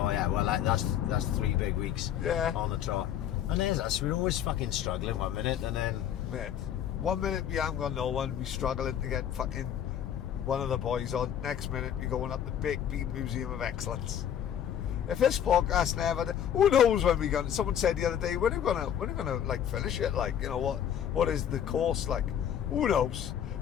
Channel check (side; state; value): right; quieter; 9.7 dB